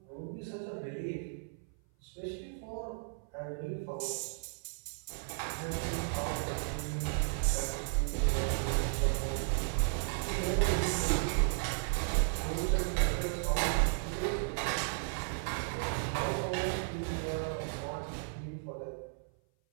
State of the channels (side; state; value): left; silent; 55 dB below the other